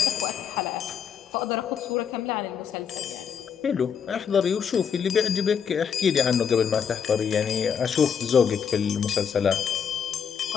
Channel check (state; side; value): quieter; right; 7.3 dB